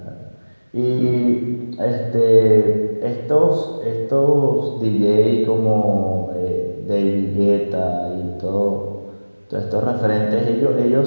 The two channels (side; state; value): both; inverted; correlation -1.00